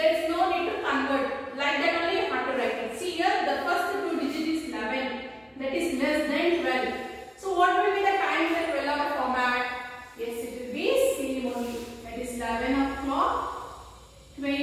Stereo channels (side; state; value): both; identical; correlation 1.00